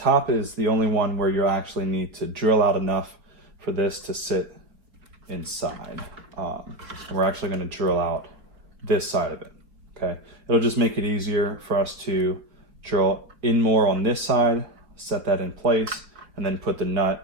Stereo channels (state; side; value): late; left; 4.3 ms